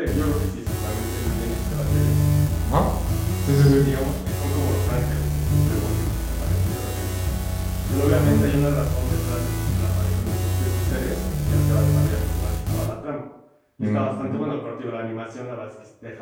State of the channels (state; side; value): identical; both; correlation 1.00